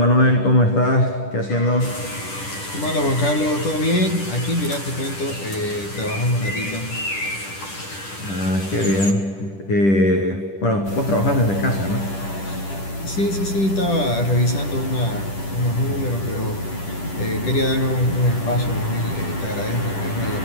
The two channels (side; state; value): right; late; 10 ms